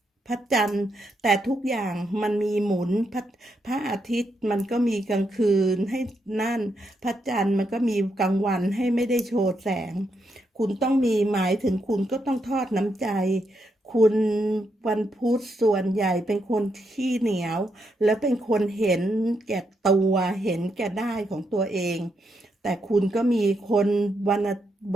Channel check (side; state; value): both; normal; correlation 0.80